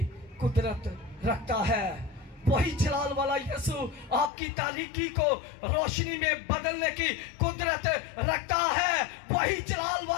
कुदरत रखता है। वही जलाल वाला यीशु आपकी तारीकी को रोशनी में बदलने की कुदरत रखता है। वही जलाल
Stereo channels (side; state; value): right; drops out; at 4.3 s